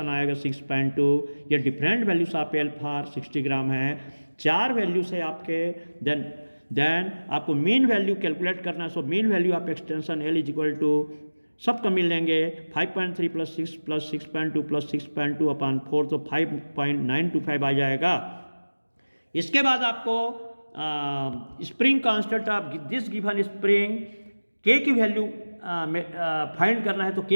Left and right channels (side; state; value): both; inverted; correlation -1.00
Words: आएगा 6.2। ये डिफरेंट वैल्यूज आप एल फॉर 60 ग्राम है। 4 वैल्यूज है आपके। देन आपको मीन वैल्यू कैलकुलेट करना है। सो मीन वैल्यू आप extension L is equal to सबको मिल लेंगे 5.3 प्लस 6 प्लस 6.2 प्लस 6.2 अपॉन 4, तो 5.925 आ जाएगा। इसके बाद आपको spring constant of this given spring के की वैल्यू फाइंड करना है। तो